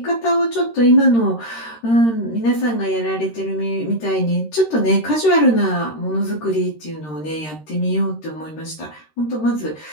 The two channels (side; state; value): right; late; 13 ms